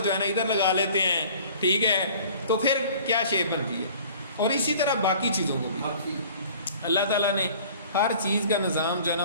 ہے نا ادھر لگا لیتے ہیں, ٹھیک ہے, تو پھر کیا شیپ بنتی ہے. اور اسی طرح باقی چیزوں کو بھی اللہ تعالیٰ نے ہر چیز کا نظام جو ہے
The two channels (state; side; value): inverted; both; correlation -0.49